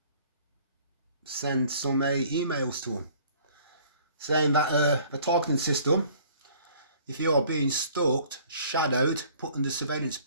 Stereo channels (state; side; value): inverted; both; correlation -0.55